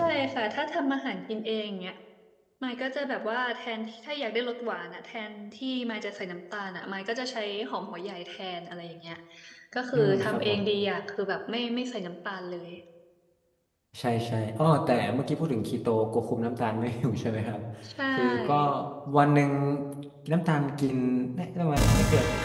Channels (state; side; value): identical; both; correlation 1.00